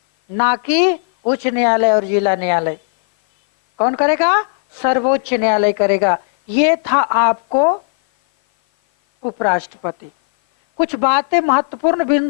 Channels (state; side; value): silent; right; 57 dB below the other